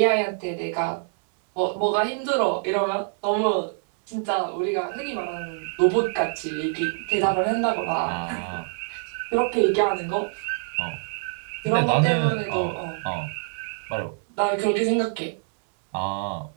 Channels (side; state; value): left; silent; 61 dB below the other